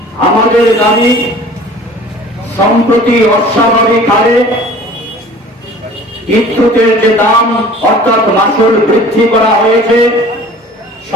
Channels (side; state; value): both; normal; correlation 0.46